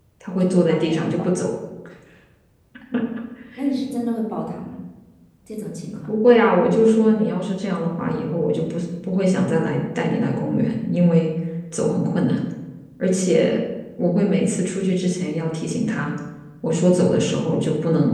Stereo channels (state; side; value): identical; both; correlation 1.00